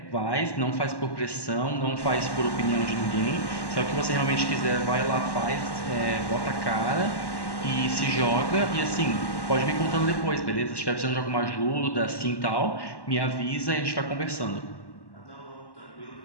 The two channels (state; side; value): late; right; 1.1 ms